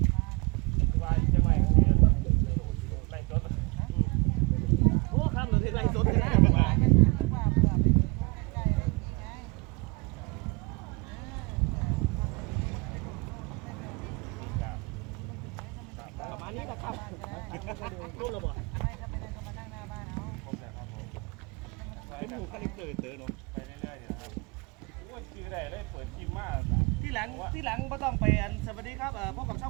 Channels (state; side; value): quieter; left; 28.6 dB